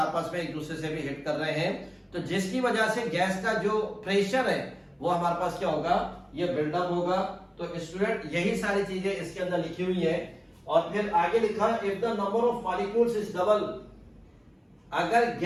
में एक दूसरे से भी हिट कर रहे हैं। तो जिसकी वजह से गैस का जो प्रेशर है वो हमारे पास क्या होगा? ये बिल्डअप होगा। तो स्टूडेंट यही सारी चीजें इसके अंदर लिखी हुई है। और फिर आगे लिखा if the number of molecules is double. अगर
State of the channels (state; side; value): identical; both; correlation 1.00